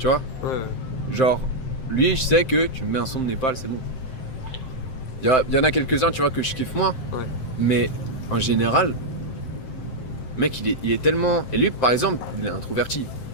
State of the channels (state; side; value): late; right; 7.7 ms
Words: vois? Ouais. Genre, lui, je sais que tu me mets un son de Népal, c'est bon. Il y en a quelques-uns, tu vois, que je kiffe moins. Ouais. Mais en général, mec, il est tellement... Et lui, par exemple, il est introverti.